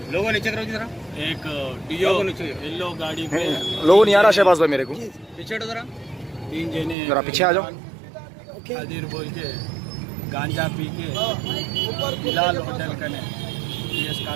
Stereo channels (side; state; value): left; drops out; at 7.0 s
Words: लोगों नीचे करो जरा, एक डियो येलो गाड़ी पे लोगों नहीं आ रहा शहबाज भाई मेरे को। पीछे हटो जरा। 3 जने जरा पीछे आ जाओ। खादिर बोल के गांजा पी के बिलाल होटल कने PS